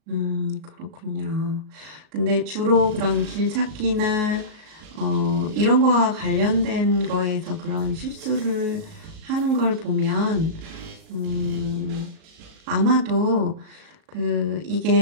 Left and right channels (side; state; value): left; late; 38 ms